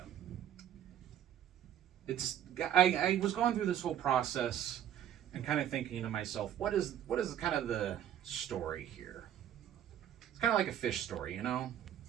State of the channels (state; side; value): quieter; left; 10.7 dB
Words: I was going through this whole process and kind of thinking to myself, what is kind of the story here? It's kind of like a fish story, you know?